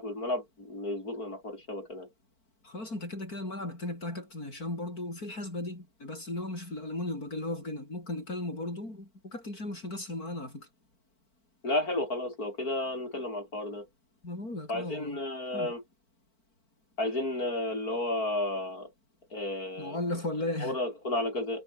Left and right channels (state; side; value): late; right; 4.5 ms